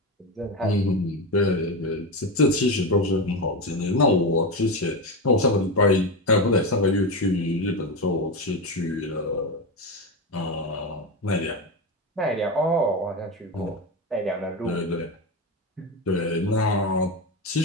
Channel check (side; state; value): both; normal; correlation 0.16